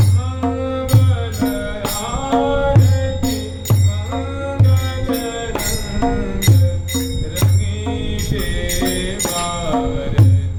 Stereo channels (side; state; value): both; identical; correlation 1.00